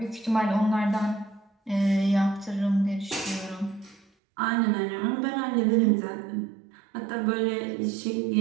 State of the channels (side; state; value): left; drops out; at 4.0 s